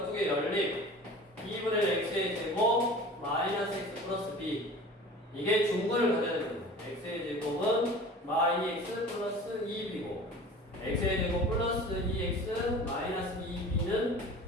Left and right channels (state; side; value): normal; both; correlation 0.41